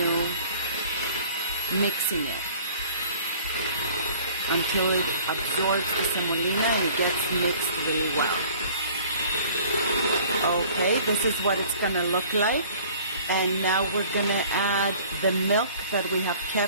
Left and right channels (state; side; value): inverted; both; correlation -0.50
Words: mixing it until it absorbs the semolina and it gets mixed really well. Okay, this is what it's gonna look like. And now we're gonna add the milk that we have